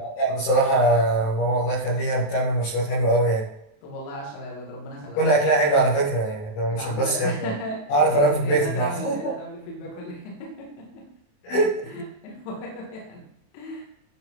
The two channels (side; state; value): right; late; 27 ms